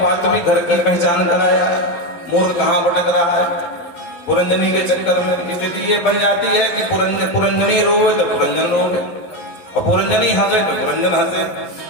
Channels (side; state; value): right; late; 11 ms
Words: घर की पहचान कराया, मूर्ख कहां भटक रहा है पुरंजनी के चक्कर में। स्थिति ये बन जाती है कि पुरंजनी रोवे तो पुरंजन रोवे, और पुरंजनी हंसे तो पुरंजन हंसे।